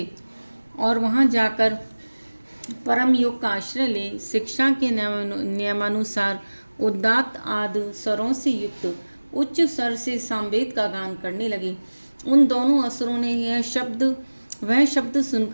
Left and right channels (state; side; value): inverted; both; correlation -1.00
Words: और वहाँ जाकर परम योग का आश्रय ले शिक्षा के नियमानुसार उदात्त आदि स्वरों से युक्त उच्च स्वर से सामवेद का गान करने लगे। उन दोनों असुरों ने वह शब्द